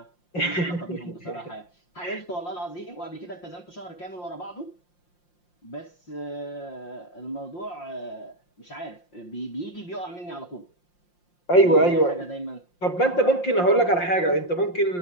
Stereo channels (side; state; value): right; late; 5.7 ms